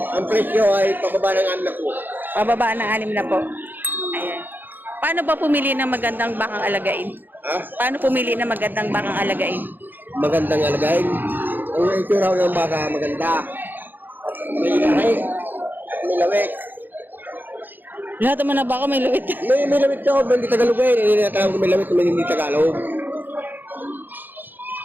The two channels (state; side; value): late; left; 0.089 ms